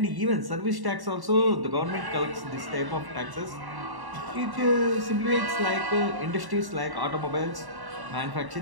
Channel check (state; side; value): late; left; 1.1 ms